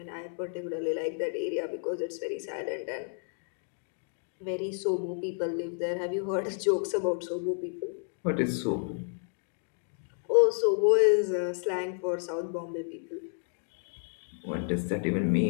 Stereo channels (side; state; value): right; silent; 57 dB below the other